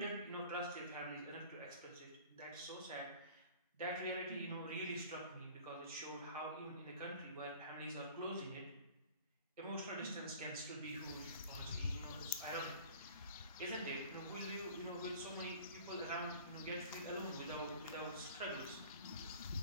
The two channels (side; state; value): both; inverted; correlation -0.45